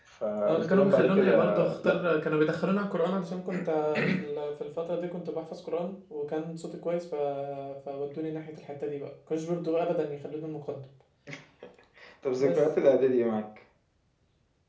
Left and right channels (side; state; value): both; identical; correlation 1.00